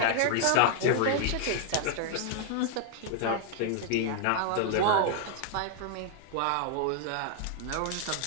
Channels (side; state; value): both; different; correlation 0.00